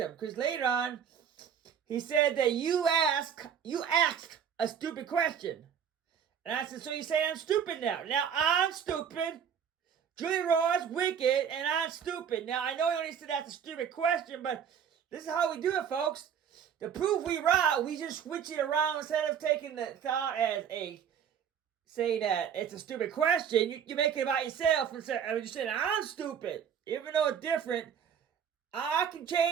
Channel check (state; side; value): quieter; left; 8.0 dB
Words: Because later on, he said that you asked a stupid question. And I said, so you say I'm stupid now. Now, I'm stupid. Julie Roy's wicked, and I'm stupid. Now, I know you only said that's a stupid question, but this is how we do it, folks. To prove we right, we just switch it around instead of taking the thought as saying that it's a stupid question. You make it about yourself and you're saying I'm stupid. Even though it's different, I can